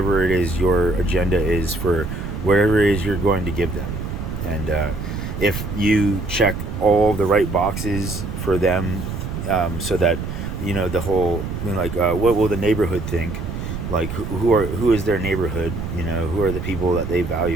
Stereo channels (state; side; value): noise; right; rumble, 6 dB below the sound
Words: it is your agenda is, for whatever it is you're going to give them. And if you check all the right boxes for them, so that, the whole, like, what will the neighborhood think, like, who is their neighborhood, who are the people that they